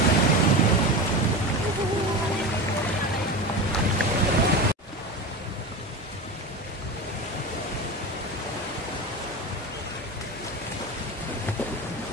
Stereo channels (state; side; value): normal; both; correlation 0.25